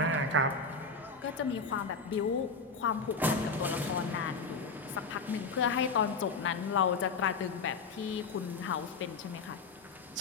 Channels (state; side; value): quieter; right; 4.2 dB